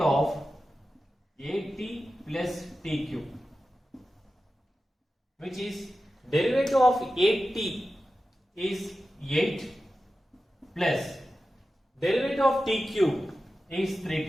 at plus t cube, which is derivative of 8t is 8 plus derivative of t cube is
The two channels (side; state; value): both; normal; correlation 0.93